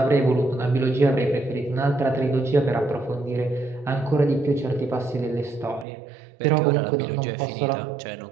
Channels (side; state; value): left; drops out; at 5.9 s